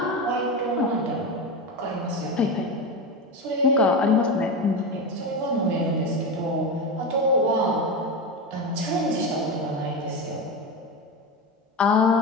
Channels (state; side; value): normal; both; correlation 0.19